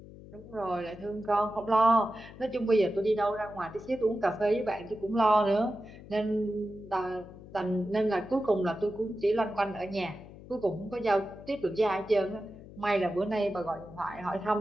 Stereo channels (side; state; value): left; noise; hum, 17 dB below the sound